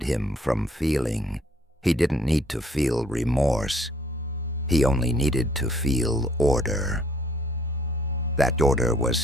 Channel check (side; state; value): both; normal; correlation 0.62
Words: him from feeling. He didn't need to feel remorse. He only needed to feel order." That order was